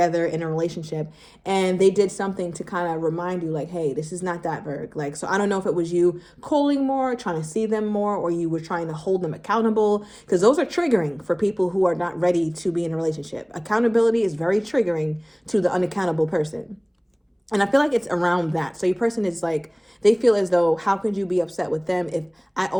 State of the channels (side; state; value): both; identical; correlation 1.00